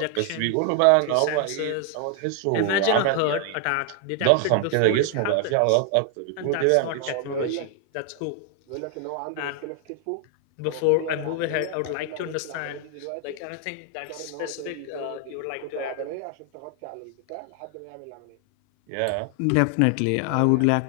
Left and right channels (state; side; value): different; both; correlation 0.00